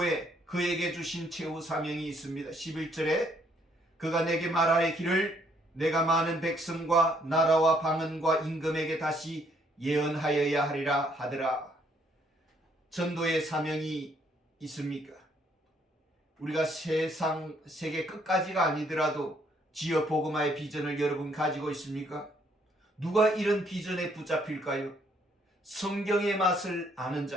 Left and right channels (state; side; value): normal; both; correlation 0.68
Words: 그에게 주신 최후 사명이 있습니다. 11절에 그가 내게 말하기를 내가 많은 백성과 나라와 방언과 임금에게 다시 예언하여야 하리라 하더라. 전도의 사명이 있습니까? 우리가 세계 끝까지가 아니더라도 지역 복음화의 비전을 여러분 가지고 있습니까? 누가 이런 비전에 붙잡힐까요? 성경의 맛을 아는